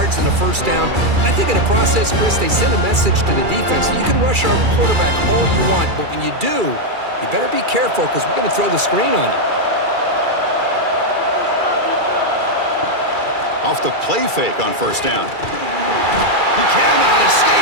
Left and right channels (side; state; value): left; late; 2.3 ms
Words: in the 1st down. I think in the process, Chris, they send a message to the defense. You can rush our quarterback all you want, but when you do, you better be careful because we're going to throw the screen on you. Off the play fake on 1st down. He cannot